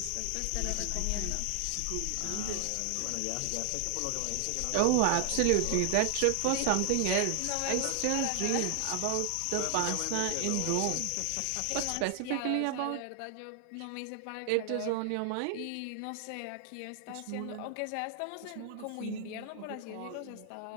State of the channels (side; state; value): both; different; correlation 0.00